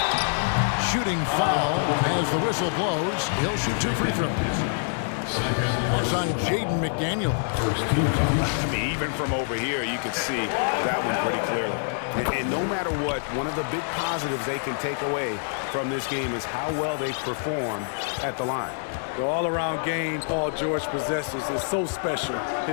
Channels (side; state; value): right; silent; digital silence